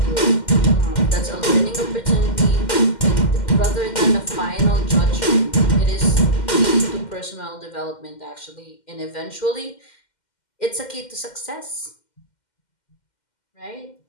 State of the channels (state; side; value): late; right; 2.1 ms